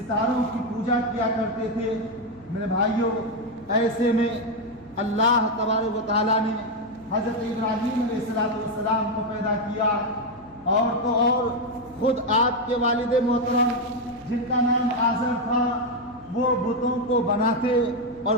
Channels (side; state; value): left; noise; hum, 27 dB below the sound